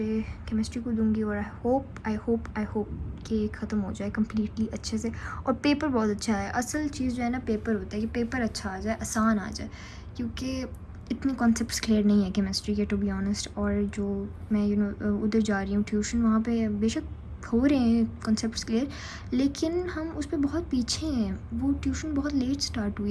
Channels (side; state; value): both; identical; correlation 1.00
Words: केमिस्ट्री को दूँगी और आई होप कि ख़त्म हो जाए कम्प्लीटली अच्छे से। और पेपर बहुत अच्छा है, असल चीज़ जो है ना पेपर होता है कि पेपर अच्छा आ जाए, आसान आ जाए, क्योंकि इतने कॉन्सेप्ट्स क्लियर नहीं है केमिस्ट्री के टू बी ऑनेस्ट। और जो मैं उधर जा रही हूँ ट्यूशन, वहाँ पे बेशक हो रहे हैं कॉन्सेप्ट्स क्लियर, लेकिन हम उस पर बहुत पीछे हैं। वो ट्यूशन बहुत लेट स्टार्ट हुई